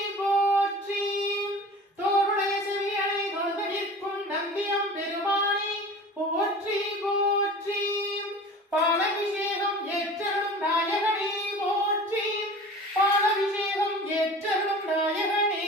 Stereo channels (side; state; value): both; normal; correlation 0.39